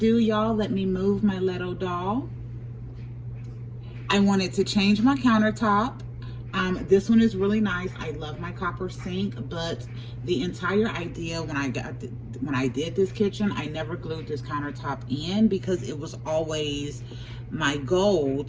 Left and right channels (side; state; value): both; identical; correlation 1.00